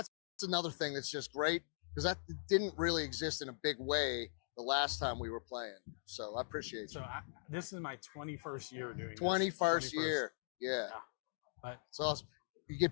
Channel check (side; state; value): right; silent; digital silence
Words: another thing that's just great because that didn't really exist in a big way the last time we were playing. So I appreciate it. So this is my 21st year doing 21st year. Yeah. But it's awesome. You